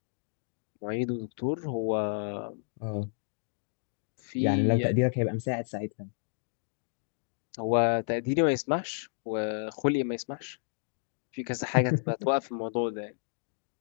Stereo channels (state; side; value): silent; right; digital silence